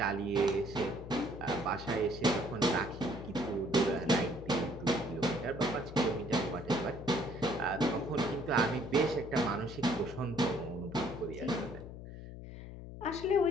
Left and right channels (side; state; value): left; noise; hum, 11 dB below the sound